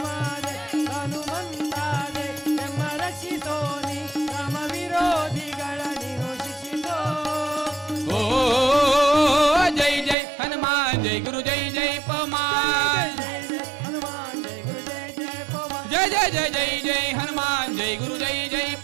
जय हनुमंता जय यम रक्षिसोनि राम विरोधिಗಳ ನೀನು ಶಿಕ್ಷಿಸೋ ओ जय जय हनुमान जय गुरु जय जय पवन जय जय हनुमान जय गुरु जय जय पवन जय जय जय जय जय हनुमान जय गुरु जय जय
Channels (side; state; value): left; drops out; at 10.2 s